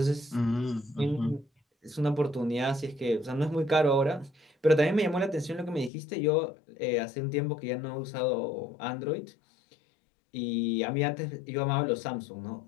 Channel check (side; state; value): right; drops out; at 5.9 s